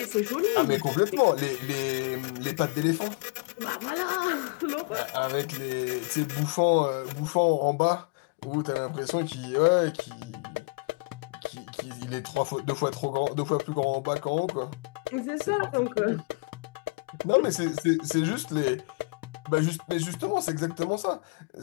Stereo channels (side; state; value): right; quieter; 28.5 dB